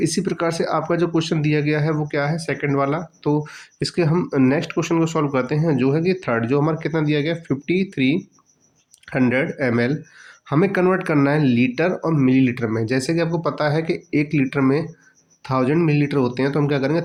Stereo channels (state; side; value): identical; both; correlation 1.00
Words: प्रकार से आपका जो क्वेश्चन दिया गया है वो क्या है, सेकंड वाला। तो इसके हम नेक्स्ट क्वेश्चन को सॉल्व करते हैं, जो है कि थर्ड, जो हमारा कितना दिया गया, 5300 ml हमें कन्वर्ट करना है लीटर और मिलीलीटर में। जैसे कि आपको पता है कि 1 लीटर में 1000 मिलीलीटर होते हैं, तो हम क्या करेंगे,